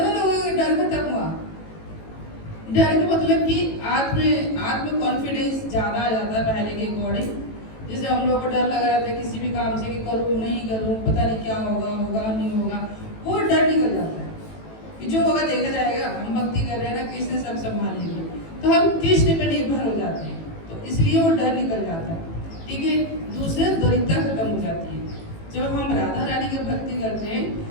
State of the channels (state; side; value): late; right; 18 ms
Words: लोगों का डर खत्म हुआ। डर का मतलब कि आत्म कॉन्फिडेंस ज़्यादा आ जाता है पहले के अकॉर्डिंग। जैसे हम लोग को डर लग रहा था किसी भी काम से कि करूँ नहीं करूँ, पता नहीं क्या होगा, होगा नहीं होगा, वो डर निकल जाता है कि जो होगा देखा जाएगा, हम भक्ति कर रहे हैं ना, कृष्ण सब संभाल लेंगे, तो हम कृष्ण पे निर्भर हो जाते हैं, तो इसलिए वो डर निकल जाता है। ठीक है, दूसरे दरिद्रता खत्म हो जाती है। जब हम राधा रानी की भक्ति करते हैं